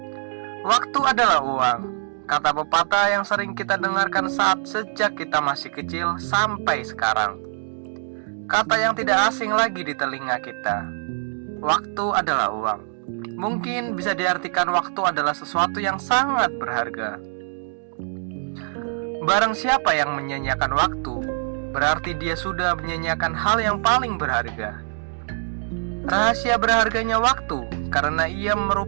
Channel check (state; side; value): silent; left; digital silence